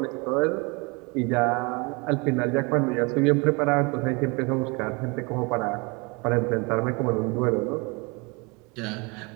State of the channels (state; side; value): quieter; left; 28.6 dB